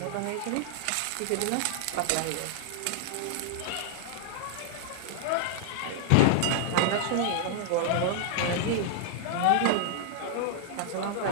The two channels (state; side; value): different; both; correlation -0.01